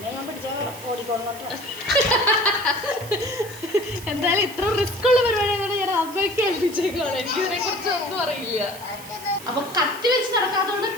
ഞാൻ പിടിച്ചാൽ ഓടിക്കോളോട്ടോ. എന്തായാലും ഇത്ര റിസ്ക് ഉള്ള പരിപാടിയാണ് ഞാൻ അമ്മയ്ക്ക് ഏൽപ്പിച്ചേക്കാണ്. എനിക്കിതിനെ കുറിച്ച് ഒന്നും അറിയില്ല. അപ്പൊ കത്തി വെച്ച് നടക്കാത്തതുകൊണ്ട്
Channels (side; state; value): right; noise; hiss, 16 dB below the sound